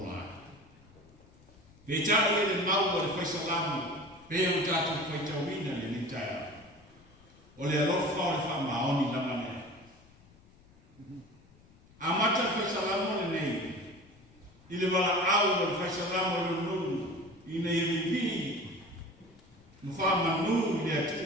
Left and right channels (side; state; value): left; noise; rumble, 26 dB below the sound